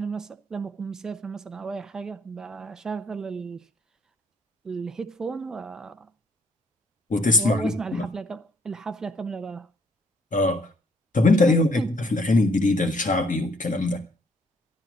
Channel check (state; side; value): normal; both; correlation 0.65